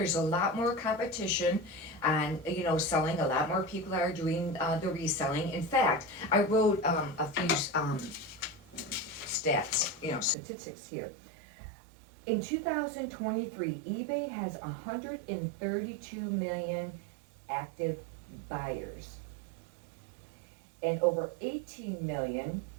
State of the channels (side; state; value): left; drops out; at 10.4 s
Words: a lot more competition and, selling. A lot more people are doing the reselling. In fact, I wrote a few statistics here. In 2023, eBay has 132 million active buyers and over 18 million